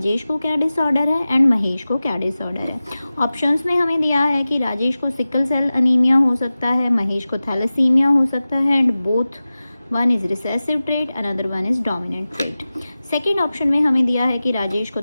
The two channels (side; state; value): both; inverted; correlation -0.96